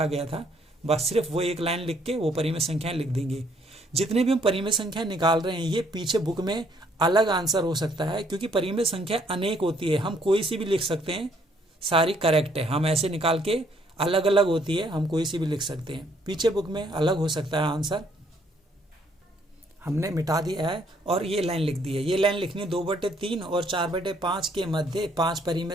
गया था। बस सिर्फ वो एक लाइन लिख के वो परिमेय संख्याएं लिख देंगे। जितने भी हम परिमेय संख्या निकाल रहे हैं ये पीछे बुक में अलग आंसर हो सकता है, क्योंकि परिमेय संख्या अनेक होती है, हम कोई सी भी लिख सकते हैं, सारी करेक्ट है। हम ऐसे निकाल के अलग अलग होती है, हम कोई सी भी लिख सकते हैं, पीछे बुक में अलग हो सकता है आंसर। हमने मिटा दिया है और ये लाइन लिख दी है। ये लाइन लिखनी 2/3 और 4/5 के मध्य 5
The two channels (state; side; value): normal; both; correlation 0.66